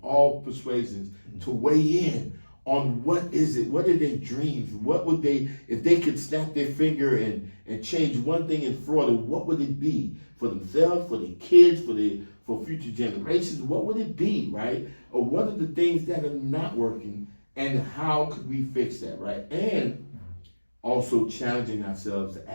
all persuasions to weigh in on what is it, what are their dreams, what would they, if they could snap their finger and change one thing in Florida, what would it be for themselves, for their kids, for future generations, what would it be, right? Or what are the things that are not working and how could we fix that, right? And also challenging ourselves to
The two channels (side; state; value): both; inverted; correlation -1.00